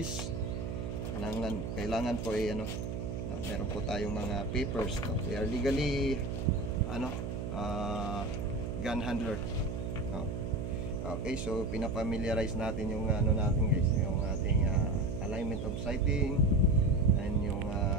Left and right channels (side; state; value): right; noise; hum, 4 dB below the sound